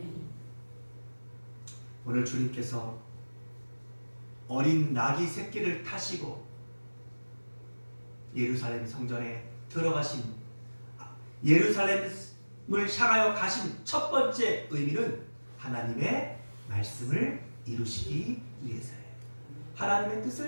오늘 주님께서 어린 나귀 새끼를 타시고 예루살렘 성전에 들어가신, 예루살렘을 향하여 가신 첫 번째 의미는 하나님의 말씀을 이루시기 위해서예요. 하나님의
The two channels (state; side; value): inverted; both; correlation -1.00